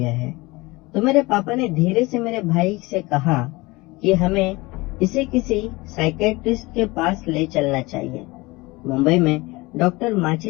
है। तो मेरे पापा ने धीरे से मेरे भाई से कहा कि हमें इसे किसी साइकेट्रिस्ट के पास ले चलना चाहिए। मुंबई में डॉक्टर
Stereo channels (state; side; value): quieter; right; 22.6 dB